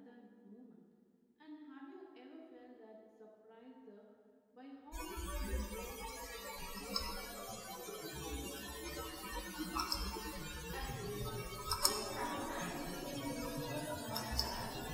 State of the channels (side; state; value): both; identical; correlation 1.00